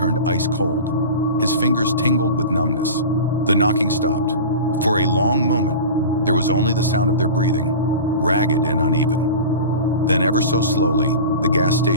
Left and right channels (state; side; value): inverted; both; correlation -0.33